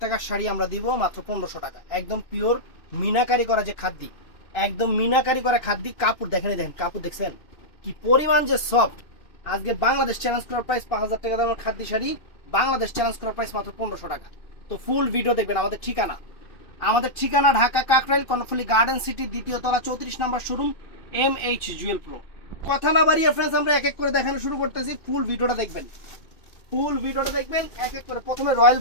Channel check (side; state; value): right; late; 2.6 ms